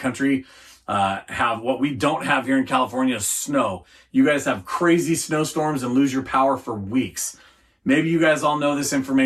have what we don't have here in California is snow. You guys have crazy snowstorms and lose your power for weeks. Maybe you guys all know this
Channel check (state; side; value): identical; both; correlation 1.00